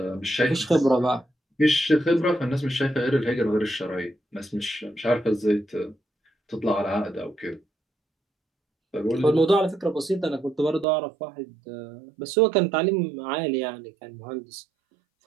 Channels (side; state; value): left; drops out; at 10.9 s